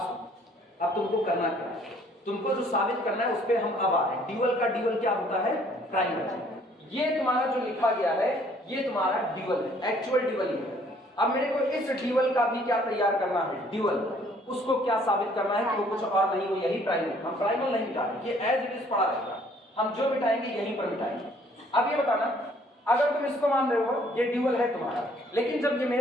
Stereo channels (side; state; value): both; normal; correlation 0.60